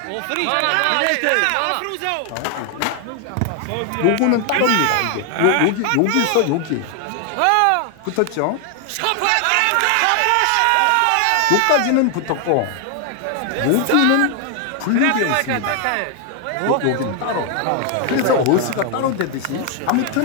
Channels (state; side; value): different; both; correlation 0.00